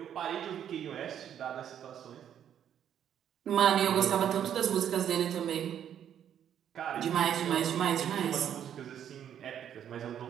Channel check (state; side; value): quieter; left; 9.5 dB